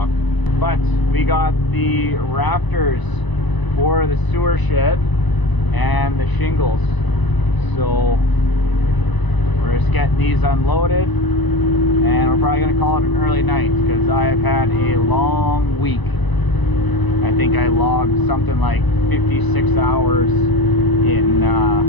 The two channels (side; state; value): right; late; 1.0 ms